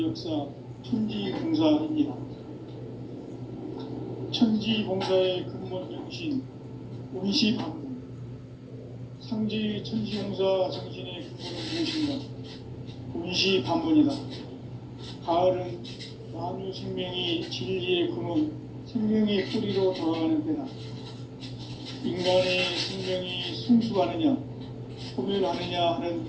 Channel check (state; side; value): identical; both; correlation 1.00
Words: 역사 천지봉사입니다. 천지봉사의 근본 정신 온시반문. 상지 천지봉사 정신의 근본은 무엇인가? 온시반문이다. 가을은 만유 생명이 진리의 근원, 생명의 뿌리로 돌아가는 때다. 인간의 생명이 성숙하느냐, 소멸하느냐 하는